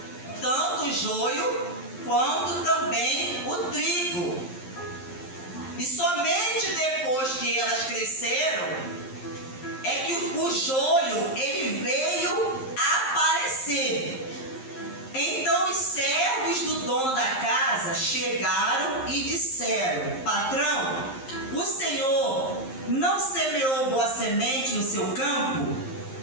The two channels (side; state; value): right; late; 11 ms